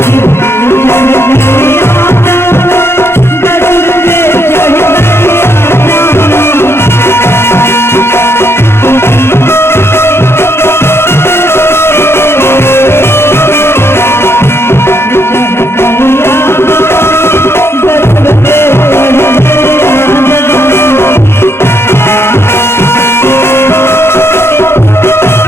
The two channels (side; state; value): right; late; 0.12 ms